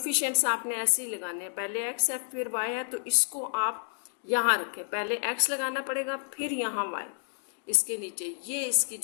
आपने ऐसे ही लगाने हैं, पहले x है फिर y है, तो इसको आप यहाँ रखें, पहले x लगाना पड़ेगा फिर यहाँ y इसके नीचे, ये इसकी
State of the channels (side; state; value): right; silent; digital silence